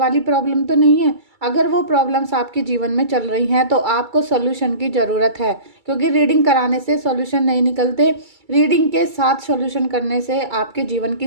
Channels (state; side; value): late; left; 2.3 ms